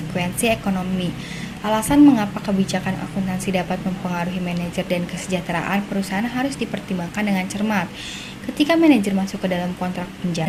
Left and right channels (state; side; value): identical; both; correlation 1.00